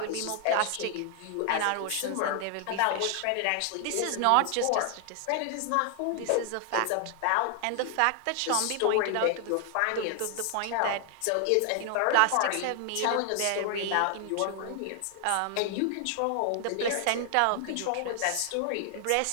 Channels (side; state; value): both; different; correlation 0.00